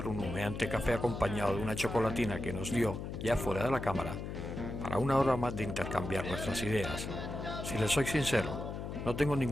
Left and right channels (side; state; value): left; noise; hum, 6 dB below the sound